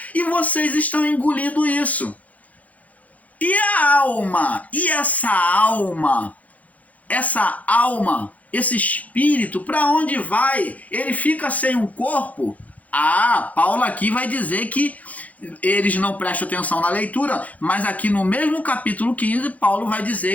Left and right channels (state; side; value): late; right; 0.073 ms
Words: E vocês estão engolindo isso. E a alma? E essa alma? Essa alma, esse espírito, para onde vai? Ele fica sem um corpo? Ah, Paulo aqui vai dizer que eles não prestam atenção na leitura, mas aqui no mesmo capítulo 15, Paulo vai